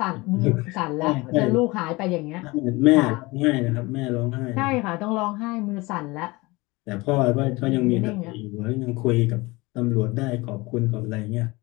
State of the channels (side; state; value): right; quieter; 23.0 dB